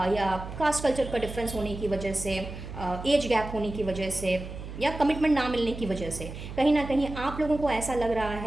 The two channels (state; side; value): noise; right; hum, 10 dB below the sound